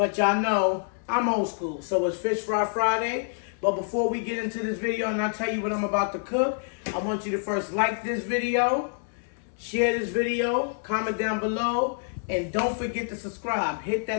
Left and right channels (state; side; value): silent; right; 60 dB below the other